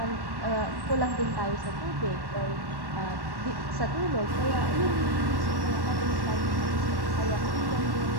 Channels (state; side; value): late; left; 1.1 ms